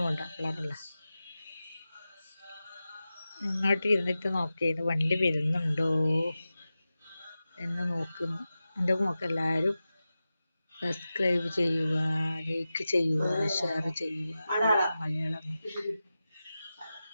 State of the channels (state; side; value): inverted; both; correlation -0.94